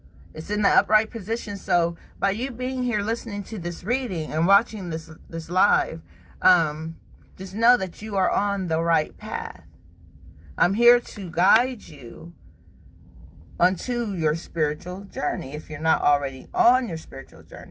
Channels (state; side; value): identical; both; correlation 1.00